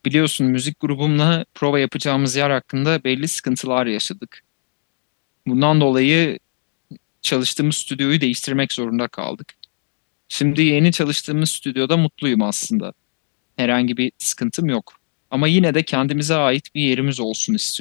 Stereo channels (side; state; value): right; silent; digital silence